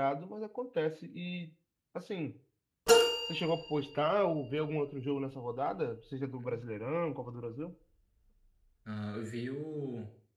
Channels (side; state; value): both; identical; correlation 1.00